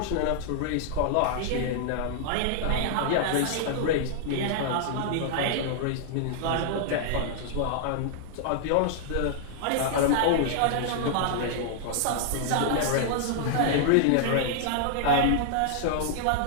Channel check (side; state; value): both; different; correlation -0.01